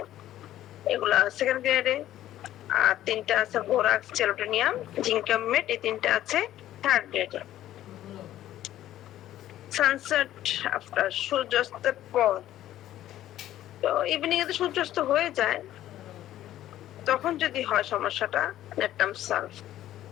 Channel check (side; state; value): right; quieter; 13.1 dB